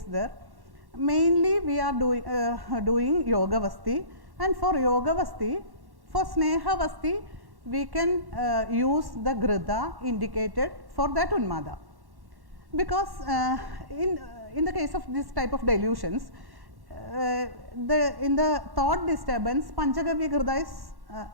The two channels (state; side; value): late; left; 1.1 ms